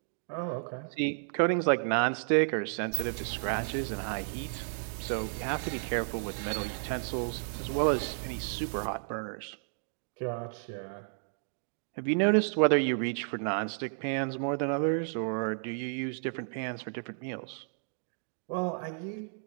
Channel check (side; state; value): left; silent; digital silence